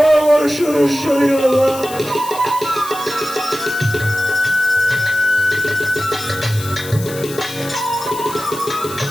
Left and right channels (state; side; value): noise; left; hiss, 13 dB below the sound